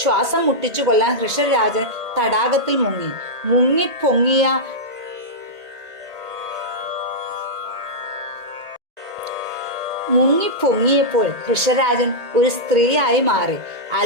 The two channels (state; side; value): late; left; 1.8 ms